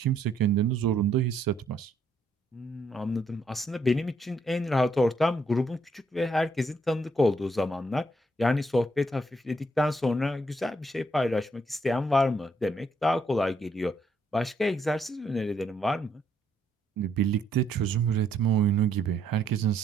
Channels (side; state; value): both; normal; correlation 0.72